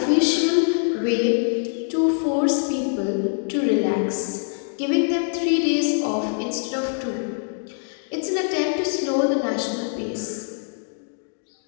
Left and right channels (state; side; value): silent; right; 63 dB below the other